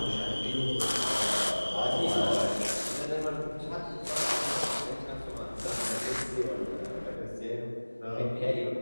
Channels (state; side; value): inverted; both; correlation -1.00